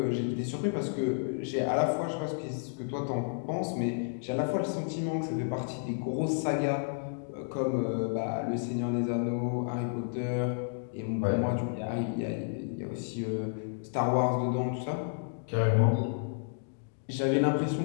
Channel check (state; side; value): silent; right; digital silence